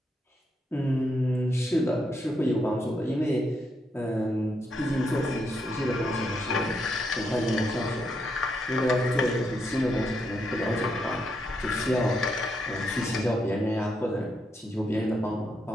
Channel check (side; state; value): both; normal; correlation 0.80